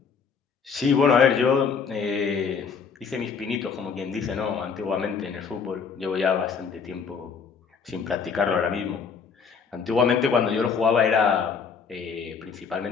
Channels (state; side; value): quieter; right; 5.9 dB